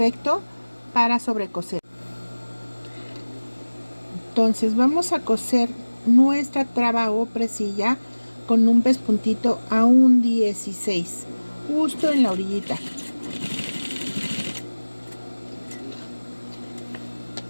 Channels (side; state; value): both; inverted; correlation -1.00